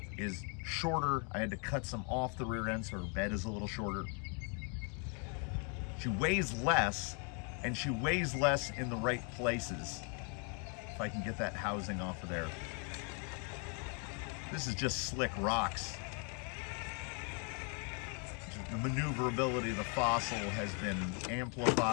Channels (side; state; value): right; quieter; 38.5 dB